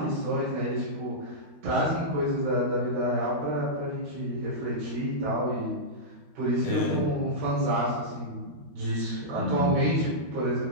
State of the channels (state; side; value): late; left; 13 ms